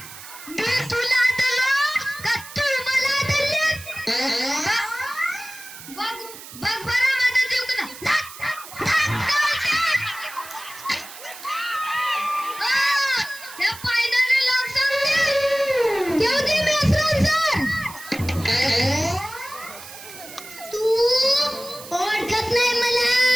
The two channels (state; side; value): noise; right; hiss, 15 dB below the sound